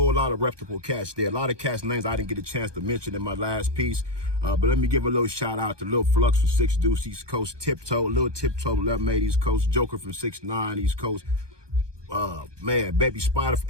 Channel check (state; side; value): late; left; 1.2 ms